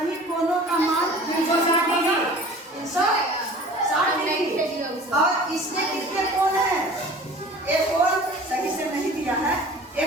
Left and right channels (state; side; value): normal; both; correlation 0.44